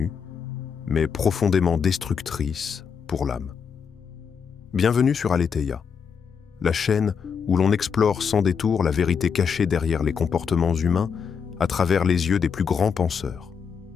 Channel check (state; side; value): quieter; right; 6.5 dB